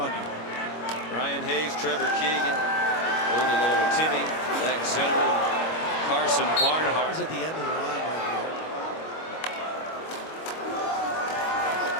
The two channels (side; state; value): right; late; 25 ms